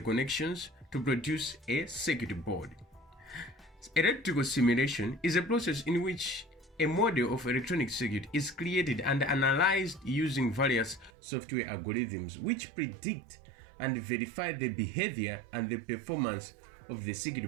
to produce a circuit board. Electrical simulation is a process in which a model of electronic circuit is created and analyzed using various software algorithms which predict and verify the behavior and the performance of the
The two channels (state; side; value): drops out; left; at 11.1 s